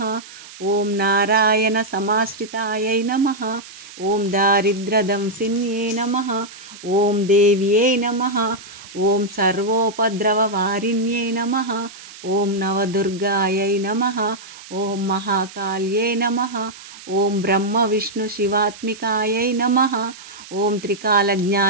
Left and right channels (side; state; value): right; noise; hiss, 17 dB below the sound